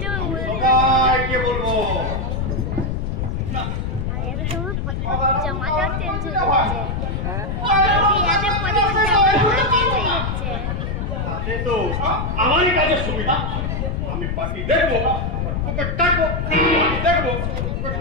জামাটাও চেঞ্জ হয়ে যাচ্ছে বিয়াতে পরে জামাটাও চেঞ্জ হয়ে যাচ্ছে তাতে তো আমারই কাজের সুবিধা আমি পাখি দেখবো ওকে টাকবো পাখি দেখবো ওকে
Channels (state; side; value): noise; left; rumble, 2 dB below the sound